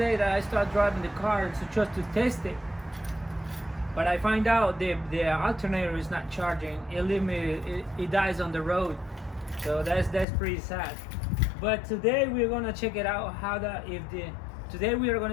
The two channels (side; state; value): right; drops out; at 10.2 s